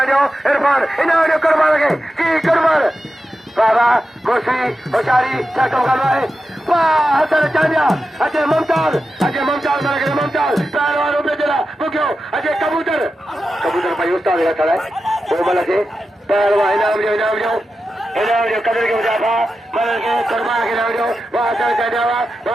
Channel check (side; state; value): both; normal; correlation 0.91